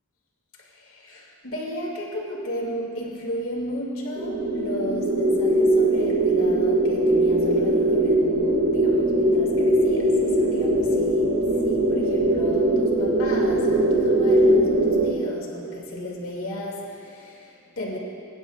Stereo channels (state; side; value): normal; both; correlation 0.39